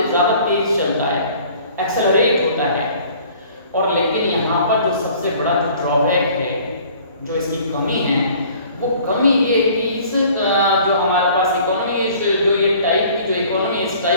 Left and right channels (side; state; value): both; inverted; correlation -0.52